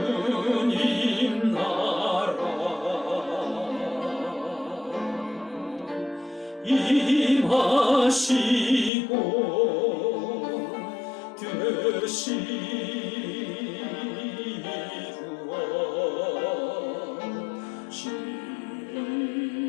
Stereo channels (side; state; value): right; drops out; at 8.9 s